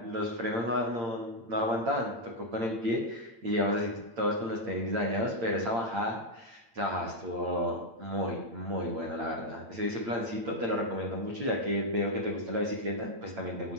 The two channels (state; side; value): late; left; 8.8 ms